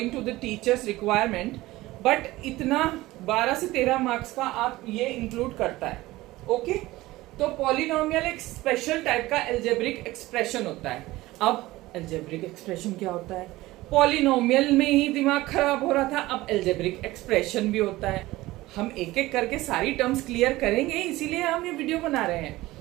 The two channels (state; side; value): quieter; left; 18.3 dB